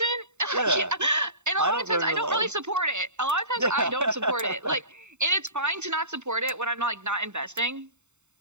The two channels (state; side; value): late; left; 0.83 ms